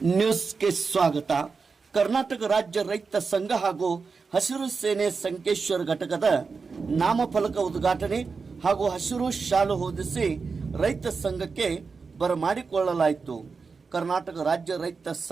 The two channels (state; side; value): quieter; left; 4.8 dB